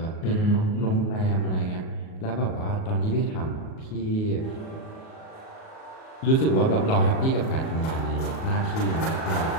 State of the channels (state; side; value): late; right; 38 ms